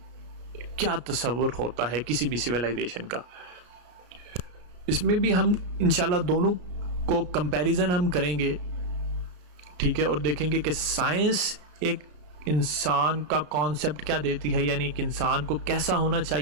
क्या तस्वुर होता है किसी भी सिविलाइजेशन का। इसमें भी हम इंशाल्लाह दोनों को कंपैरिजन हम करेंगे, ठीक है, और देखेंगे कि साइंस एक इंसान का कॉन्सेप्ट क्या देती है, यानी एक इंसान को कैसा होना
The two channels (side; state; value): left; late; 33 ms